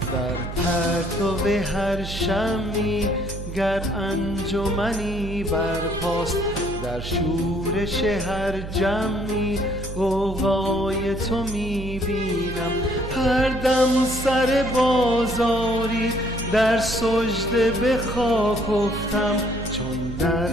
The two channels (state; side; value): noise; right; hum, 8 dB below the sound